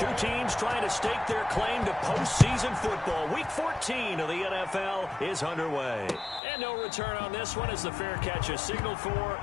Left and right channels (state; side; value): drops out; right; at 6.4 s